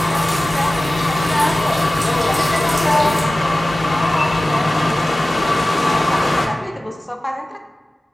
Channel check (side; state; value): both; normal; correlation 0.97